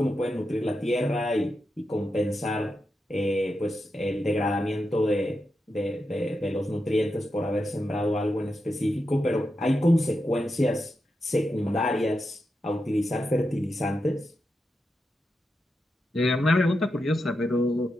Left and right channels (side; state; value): both; normal; correlation 0.87